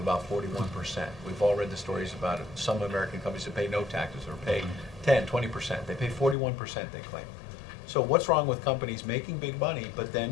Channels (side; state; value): right; drops out; at 6.4 s